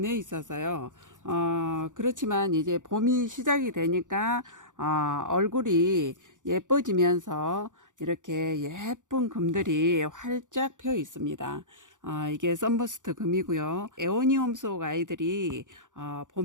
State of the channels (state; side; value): late; left; 0.87 ms